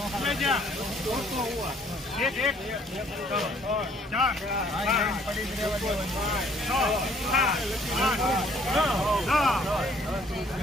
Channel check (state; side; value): normal; both; correlation 0.61